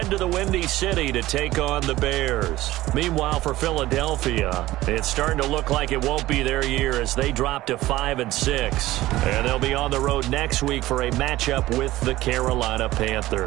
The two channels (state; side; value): quieter; left; 16.7 dB